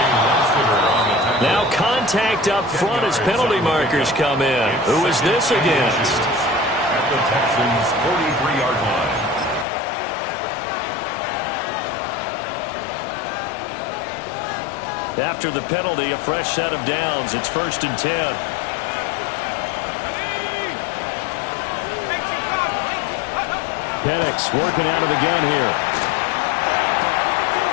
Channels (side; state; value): right; drops out; at 9.7 s